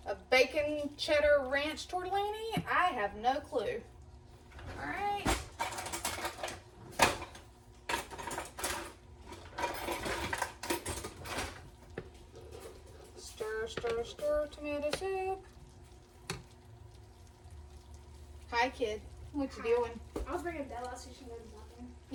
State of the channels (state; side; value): identical; both; correlation 1.00